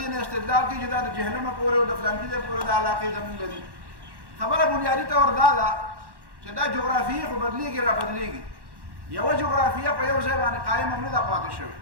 نه استدلال کوي چې دا د جهنمه پورې او د فلانکي ځای پورې د علاقې زمونږ دي خبره بنیادي طور دا ده چې دا جغرافیه خو بدلیږي را بدلیږي یو جغرافیه په یو ځای باندې قائمه نه ده پاتې شوې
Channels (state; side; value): late; left; 1.1 ms